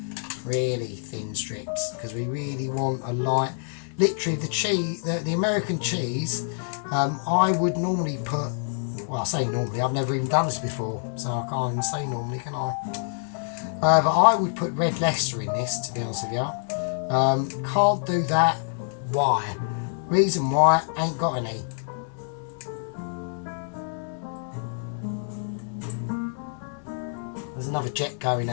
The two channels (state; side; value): silent; right; digital silence